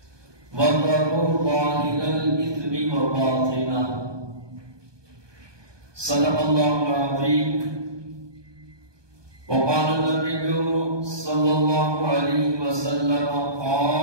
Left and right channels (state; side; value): late; left; 1.2 ms